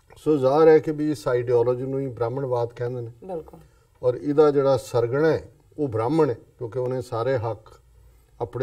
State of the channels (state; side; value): identical; both; correlation 1.00